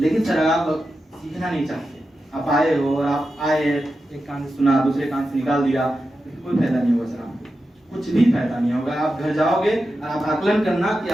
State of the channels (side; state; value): both; normal; correlation 0.90